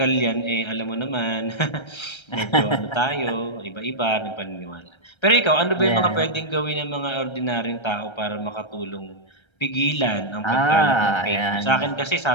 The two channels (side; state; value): right; late; 1.3 ms